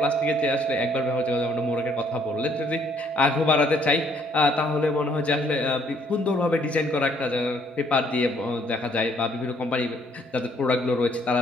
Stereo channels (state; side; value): normal; both; correlation 0.65